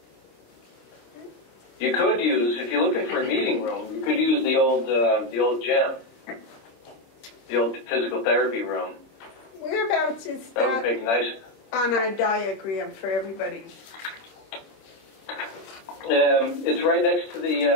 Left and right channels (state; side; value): late; right; 26 ms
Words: You could use, if you're looking for a meeting room, you could use the old gym, the old physical therapy room. Whereabouts is That would make nice. on our diagram for everybody? It's right next to